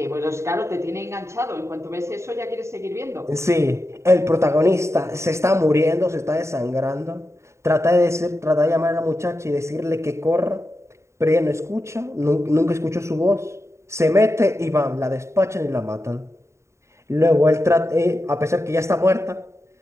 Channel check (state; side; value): late; left; 0.14 ms